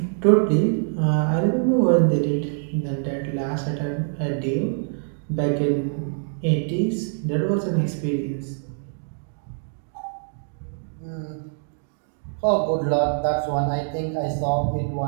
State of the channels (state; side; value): silent; left; digital silence